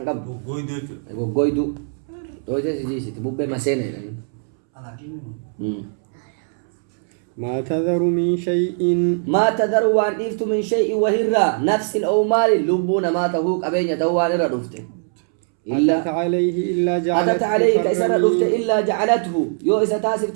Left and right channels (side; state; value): left; silent; 65 dB below the other